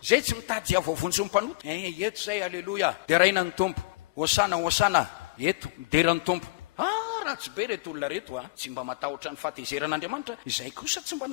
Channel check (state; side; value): quieter; right; 22.4 dB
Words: zay tsy mitady avavontsy ny mpanota. Eto zay, aleloia. Dia raina ny tompo, hosana hosana, eto midera ny tompo. Tsy be reto olona reto tsy mba matahotra ny fahatezeran'Andriamanitra. Izay kosa tsy mba